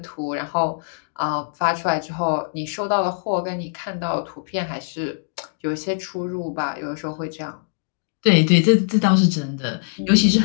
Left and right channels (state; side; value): silent; right; digital silence